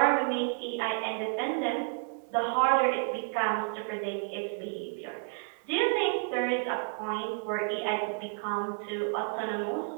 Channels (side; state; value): left; silent; 57 dB below the other